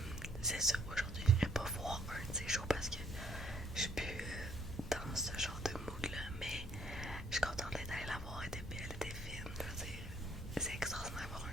c'est ça, aujourd'hui, je n'irai pas voir un de ces shows parce que je suis plus dans ce genre de mood-là. Mais je suis contente d'être allée la voir, elle était belle, elle était fine. Je veux dire, c'est extraordinaire d'avoir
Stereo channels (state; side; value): normal; both; correlation 0.66